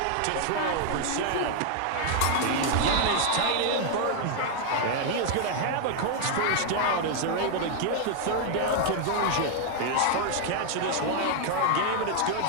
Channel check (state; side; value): different; both; correlation 0.00